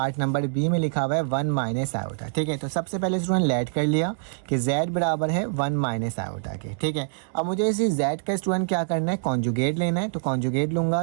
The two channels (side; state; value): left; silent; digital silence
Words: नंबर बी में लिखा हुआ है 1 माइनस आयोटा। ठीक है, तो सबसे पहले स्टूडेंट लेट कर लिया कि z बराबर है 1 माइनस आयोटा के। ठीक है, अब मुझे इसी z का स्टूडेंट क्या करना है, कॉन्जुगेट लेना है। तो कॉन्जुगेट लूँगा